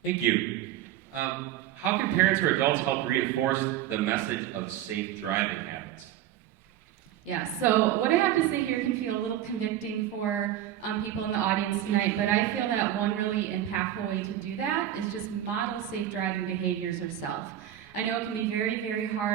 Thank you. How can parents or adults help reinforce the message of safe driving habits? Yeah, so what I have to say here can feel a little convicting for people in the audience tonight, but I feel that one really impactful way to do that is just model safe driving behaviors yourself. I know it can be very, very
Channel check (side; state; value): left; quieter; 12.0 dB